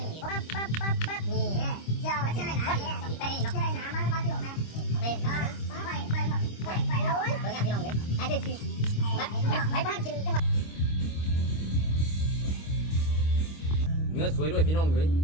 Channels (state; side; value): late; right; 25 ms